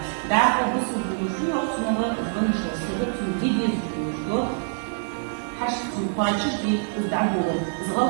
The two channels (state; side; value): silent; left; digital silence